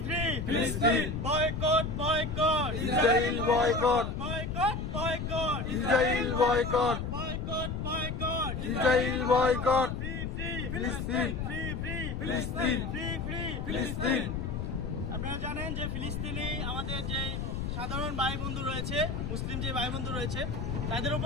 free. Palestine. Boycott, boycott. Israel boycott. Boycott, boycott. Israel boycott. Boycott, boycott. Israel boycott. Free, free. Palestine. Free, free. Palestine. Free, free. Palestine. আপনারা জানেন যে ফিলিস্তিনি আমাদের যে সাধারণ ভাই বন্ধু রয়েছে, মুসলিম যে ভাই বন্ধু রয়েছে, তাদের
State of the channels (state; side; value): noise; left; rumble, 3 dB below the sound